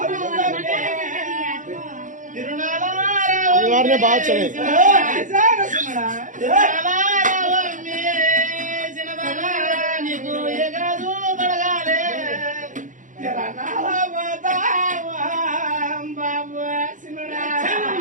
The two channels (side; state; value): left; late; 0.37 ms